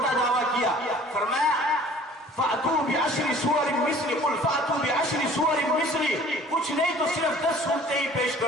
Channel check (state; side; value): normal; both; correlation 0.50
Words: دعویٰ کیا، فرمایا فَأْتُوا بِعَشْرِ سُوَرٍ مِثْلِ، قُلْ فَأْتُوا بِعَشْرِ سُوَرٍ مِثْلِ، کچھ نہیں تو صرف 10 صورتیں ہی پیش